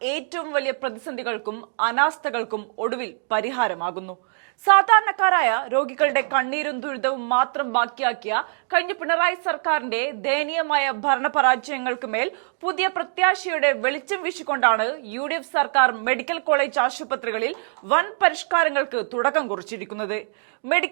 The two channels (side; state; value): left; silent; 61 dB below the other